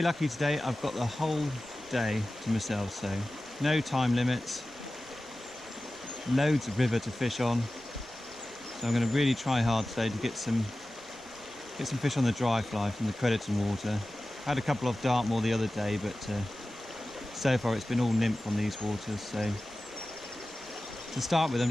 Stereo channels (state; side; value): noise; right; rumble, 25 dB below the sound